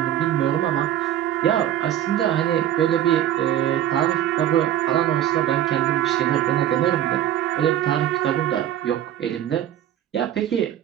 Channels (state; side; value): quieter; left; 11.6 dB